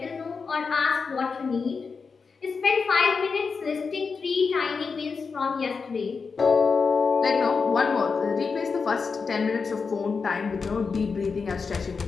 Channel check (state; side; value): quieter; right; 5.1 dB